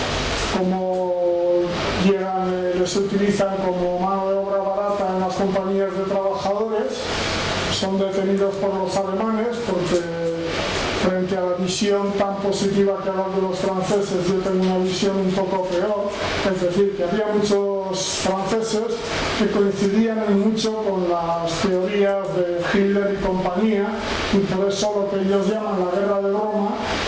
como llegan, les utilizan como mano de obra barata en las compañías de trabajadores, son detenidos por los alemanes porque frente a la visión tan positiva que hablan de los franceses, yo tengo una visión un poco peor, es decir, que había muchos franceses que coincidían en mucho con las teorías de Hitler y compañía, y por eso lo que ellos llaman la guerra de Roma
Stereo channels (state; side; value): identical; both; correlation 1.00